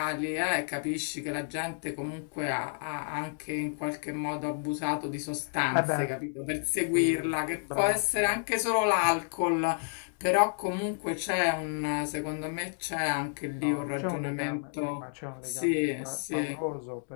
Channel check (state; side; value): silent; right; 57 dB below the other